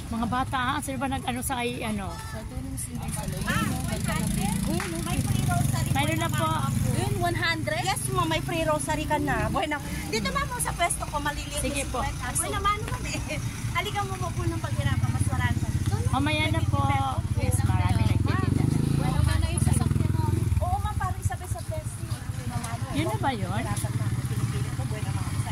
Mga bata, sino ba nag-ano sa kay ano? Sa tulong silang sa loob. Ganda na din. May free rosary. Mayroon na po. Yun, 100? Yes, ma'am, may free rosary ka na. Bueno, dito ma'am sa pwesto ko, maliliit. Sige po. Bueno, naman eh. Halika mo po ng paghirapan, mas marami pa. Mamaya na po. Yes, marami nagtitinda na. Bueno, ka na yung sasakyan mo. Oo, ma'am, parang sabi sa pwesto. Yun na ba yun? Pinipili ko, bueno, mga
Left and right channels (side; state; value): both; identical; correlation 1.00